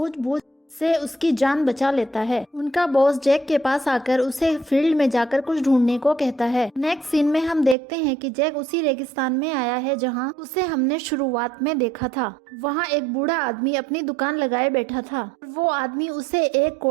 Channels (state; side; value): drops out; left; at 7.8 s